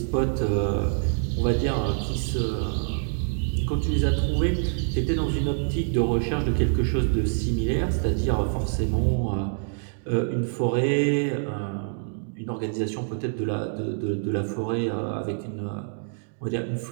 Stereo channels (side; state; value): left; silent; digital silence